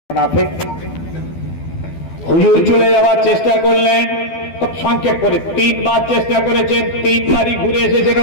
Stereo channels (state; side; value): late; right; 12 ms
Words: মুনাফিক হুজুর চলে যাওয়ার চেষ্টা করলেন, খুব সংক্ষেপ করে 3 বার চেষ্টা করেছেন, 3 বারই ঘুরে এসেছেন,